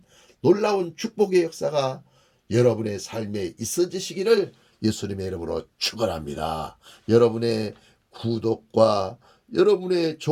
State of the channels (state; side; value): identical; both; correlation 1.00